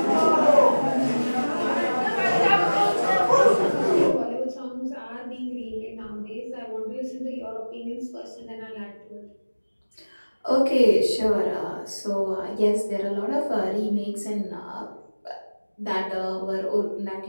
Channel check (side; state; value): both; inverted; correlation -1.00